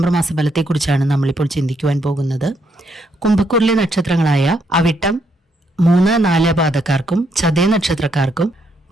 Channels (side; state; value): both; normal; correlation 0.75